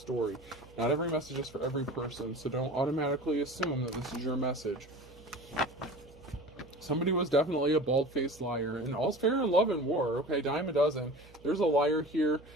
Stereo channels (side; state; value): right; noise; hum, 23 dB below the sound